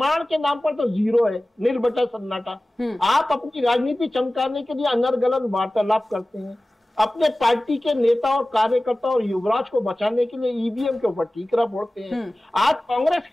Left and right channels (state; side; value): normal; both; correlation 0.97